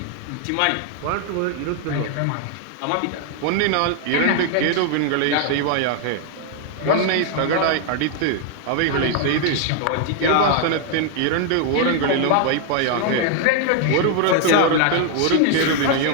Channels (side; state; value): both; different; correlation 0.00